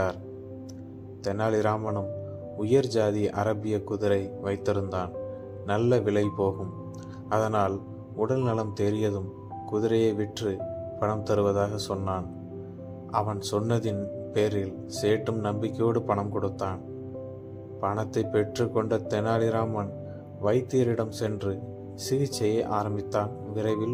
தெனாலிராமனும் உயர் ஜாதி அரபிய குதிரை வைத்திருந்தான். நல்ல விலை போகும். அதனால் உடல் நலம் தேறியதும் குதிரையை விற்று பணம் தருவதாக சொன்னான். அவன் சொன்னதின் பேரில் சேட்டும் நம்பிக்கையோடு பணம் கொடுத்தான். பணத்தை பெற்று கொண்ட தெனாலிராமன் வைத்தியரிடம் சென்று சிகிச்சையை ஆரம்பித்தான்.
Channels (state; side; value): identical; both; correlation 1.00